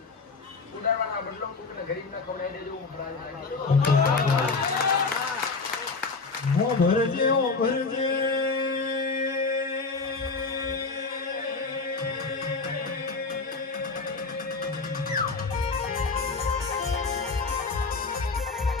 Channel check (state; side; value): quieter; right; 4.2 dB